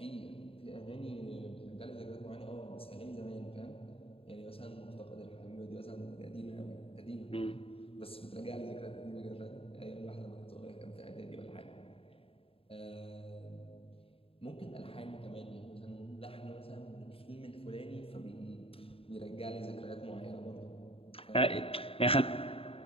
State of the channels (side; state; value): right; late; 0.27 ms